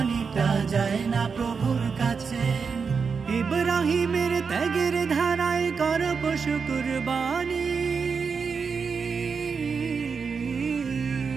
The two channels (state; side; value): quieter; left; 5.5 dB